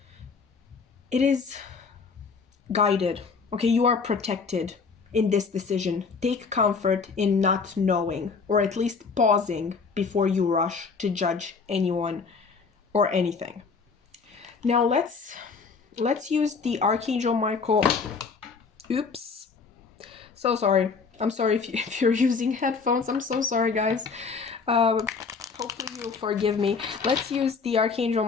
It is guided. Okay, you are protected in this decision. Take comfort in not knowing, or at least pausing before you rush to judge anyone or anything. Now let's use the Archangel Michael. Oops. So sorry. I'm sorry if you're using headphones. I'm so sorry, guys. Hopefully you'll forgive me. Let's use the Archangel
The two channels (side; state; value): right; quieter; 5.0 dB